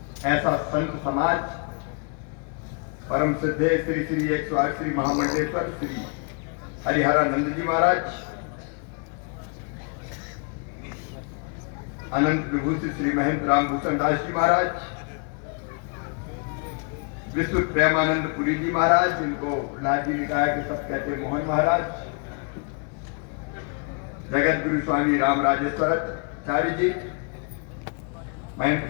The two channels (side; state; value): right; quieter; 36.3 dB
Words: ऐसा संत समाज परम सिद्धे श्री श्री 108 श्री महामंडलेश्वर श्री हरिहरानंद जी महाराज, अनंत विभूषित श्री महंत रामभूषण दास जी महाराज, विश्व प्रेमानंद पुरी जी महाराज, जिनको लाजी निकाय के सब कहते मोहन महाराज, जगत गुरु स्वामी राम राजेश्वराचार्य जी,